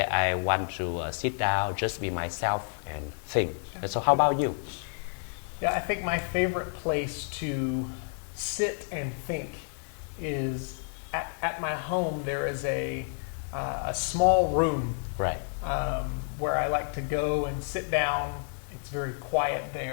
I want to sit down, just be myself and think. And so how about you? Yeah, I think my favorite place to sit and think is at my home. There is a small room, Right. Where I like to go and sit down. It's very quiet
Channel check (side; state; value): right; silent; 58 dB below the other